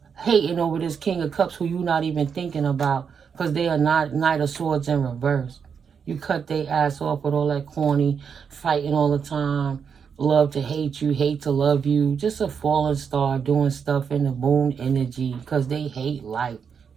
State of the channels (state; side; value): quieter; left; 6.6 dB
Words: Hating over this King of Cups who you not even thinking about because they are not Knight of Swords in reverse. You cut their ass off with all that corny fighting all the time. Love to hate you, hate to love you. Just a fallen star doing stuff in the moon energy because they hate life.